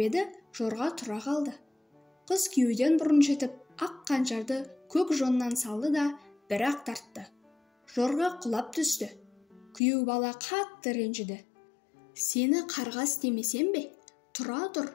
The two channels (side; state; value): right; drops out; at 9.8 s